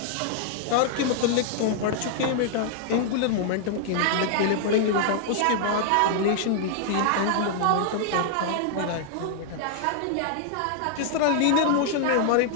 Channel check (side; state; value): both; different; correlation -0.01